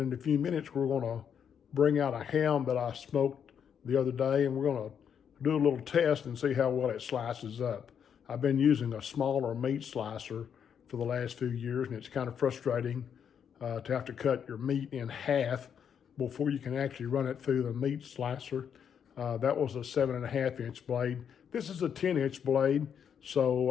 in a few minutes, we're going to bring out a ham that I smoked the other day, and we're going to do a little test and see how well it slices up. I've been using a smaller meat slicer for the last few years, and it's kind of frustrating to have to cut your meat in half before you can actually run it through the meat slicer. That was a 7.5-inch blade. This is a 10-inch blade, so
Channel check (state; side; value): quieter; right; 7.9 dB